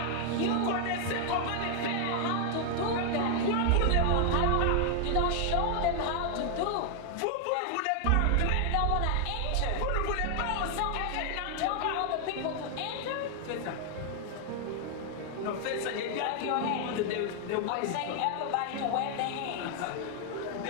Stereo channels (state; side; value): different; both; correlation 0.00